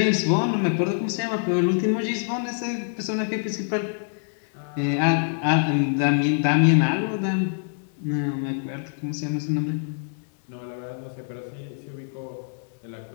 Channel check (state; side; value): silent; right; digital silence